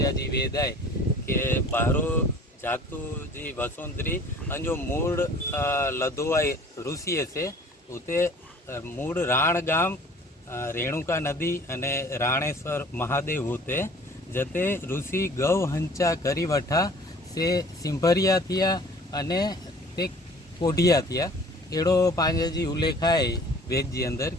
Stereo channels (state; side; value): normal; both; correlation 0.49